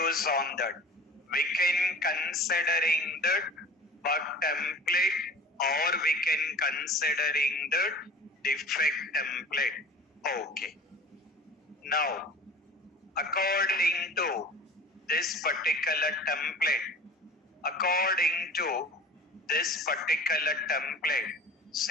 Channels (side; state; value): both; normal; correlation 0.41